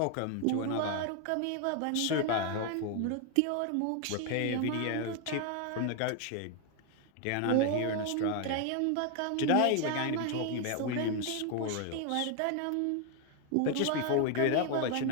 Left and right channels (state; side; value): different; both; correlation 0.01